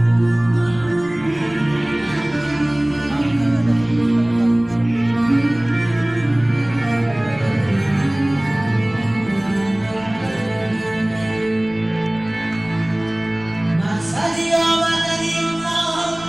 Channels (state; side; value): noise; left; rumble, 21 dB below the sound